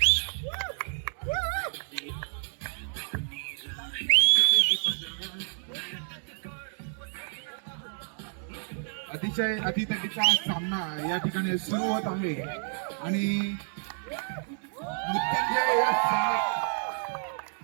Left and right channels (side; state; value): left; silent; 58 dB below the other